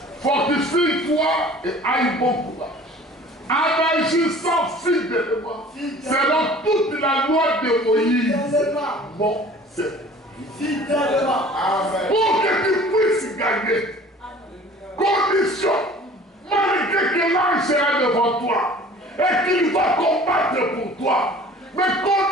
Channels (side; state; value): both; normal; correlation 0.47